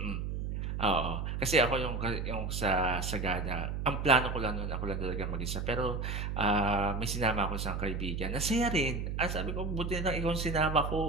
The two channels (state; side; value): noise; right; hum, 3 dB below the sound